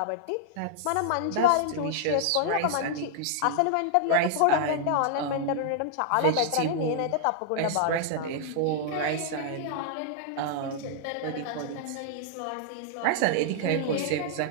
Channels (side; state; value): both; different; correlation -0.01